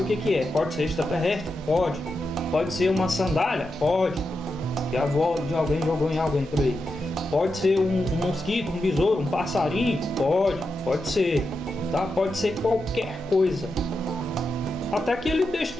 o que é. Pode ser extraterrestre? Pode. Pode ser uma sandália? Pode. Que a avó de alguém jogou em alguém por aí. Pode ser um mosquito, um besouro, um passarinho? Pode ser. Tá? Pode ser qualquer coisa. Até que ele deixe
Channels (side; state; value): both; normal; correlation 0.88